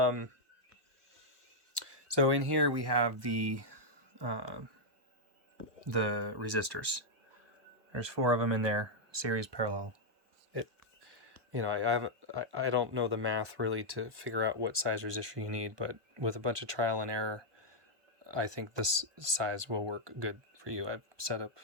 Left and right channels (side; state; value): left; late; 1.2 ms